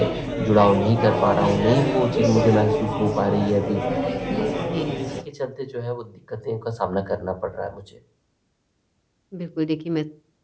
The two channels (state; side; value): identical; both; correlation 1.00